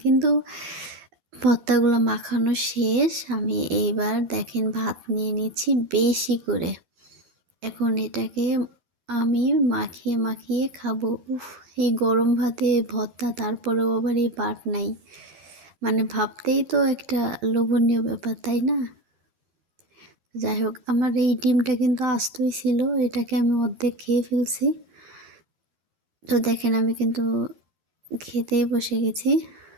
কিন্তু ভর্তাগুলো মাখানো শেষ। আমি এইবার দেখেন ভাত নিয়ে নিচ্ছি বেশি করে। এখন এটাকে আমি মাখিয়ে, মাখিয়ে খাবো। উফ! এই গরম ভাতে ভর্তা তারপরেও আবার এই বাটনাই। মানে ভাবতেই তো একটা লোভনীয় ব্যাপার, তাই না? যাই হোক আমার এই ডিমটা কিন্তু আস্তই ছিল। এটাকে আমি অর্ধেক খেয়ে ফেলছি। তো দেখেন আমি কিন্তু খেতেই বসে গেছি।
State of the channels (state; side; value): late; left; 13 ms